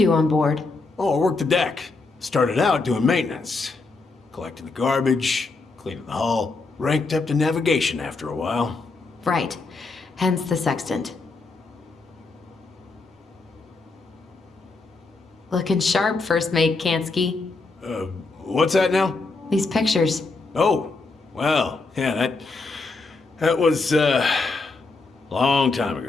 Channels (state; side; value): quieter; right; 3.7 dB